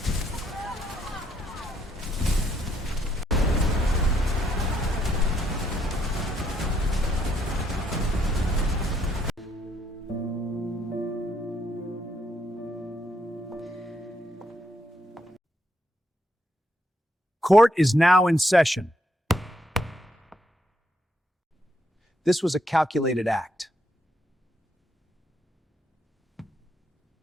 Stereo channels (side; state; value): both; normal; correlation 0.74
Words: Court is now in session. This was a calculated act.